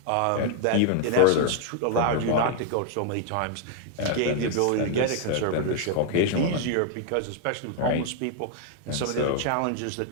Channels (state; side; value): different; both; correlation 0.00